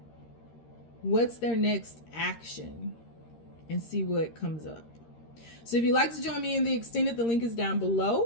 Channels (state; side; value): late; right; 13 ms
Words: what's their next action? And see what comes up. So if you'd like to join me in the extended, the link is down